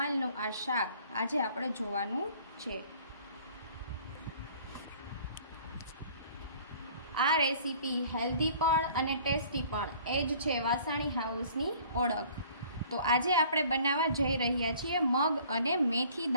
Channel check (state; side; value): inverted; both; correlation -0.52